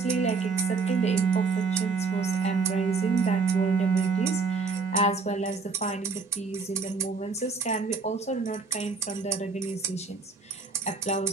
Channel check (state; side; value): quieter; left; 4.6 dB